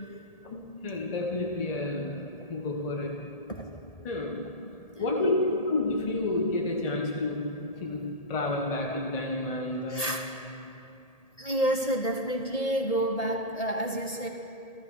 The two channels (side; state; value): right; late; 1.8 ms